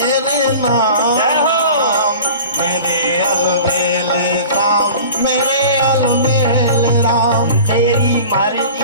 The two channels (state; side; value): inverted; both; correlation -0.40